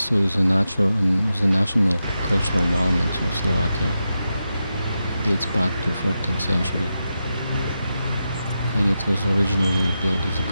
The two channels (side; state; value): both; inverted; correlation -0.89